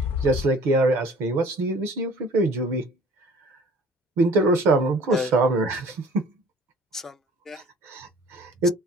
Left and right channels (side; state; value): both; normal; correlation 0.50